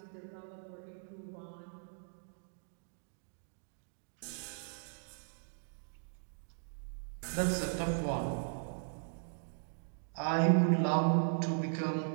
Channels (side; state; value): left; silent; digital silence